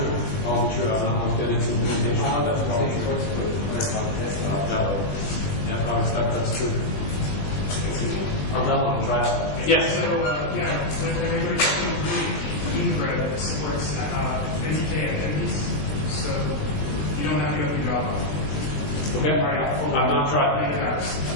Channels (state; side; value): late; right; 20 ms